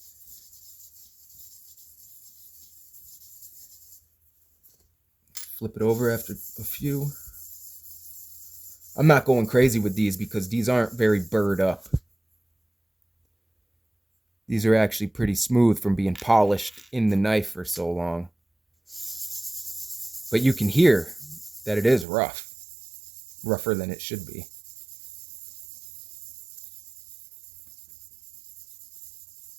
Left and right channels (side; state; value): left; drops out; at 22.1 s